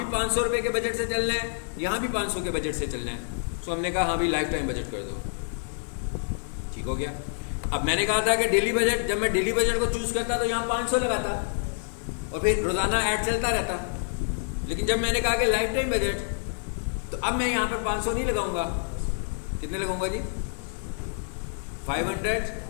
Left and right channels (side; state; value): right; silent; digital silence